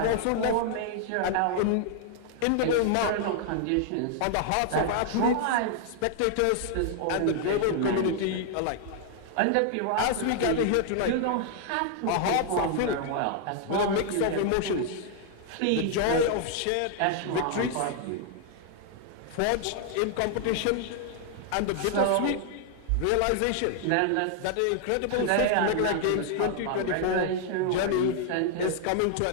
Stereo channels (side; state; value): both; different; correlation 0.00